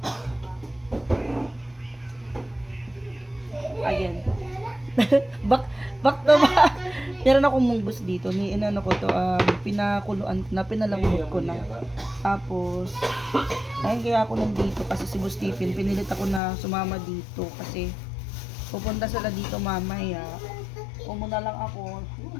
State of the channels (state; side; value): drops out; right; at 16.4 s